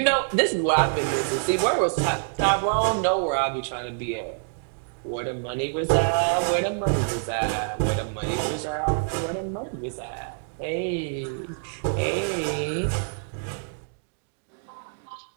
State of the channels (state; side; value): silent; left; digital silence